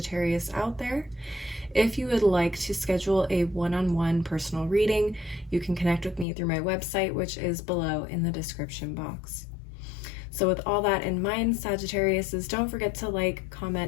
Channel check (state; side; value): drops out; right; at 6.2 s